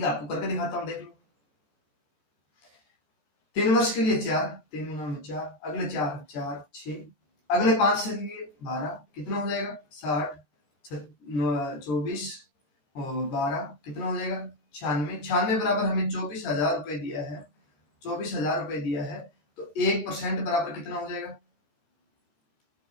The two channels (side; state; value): right; late; 14 ms